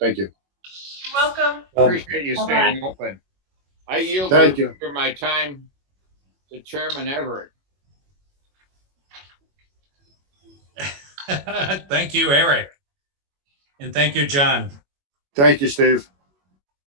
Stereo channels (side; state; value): left; late; 21 ms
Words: you. You're welcome. Appreciate you Bye-bye. staying open. I yield Thank you. for my time to Chairman Everett. Thank you, Eric. And thank you, John. Thank you, Steve.